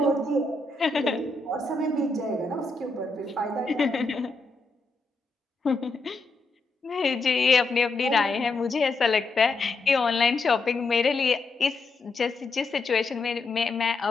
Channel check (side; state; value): right; quieter; 3.5 dB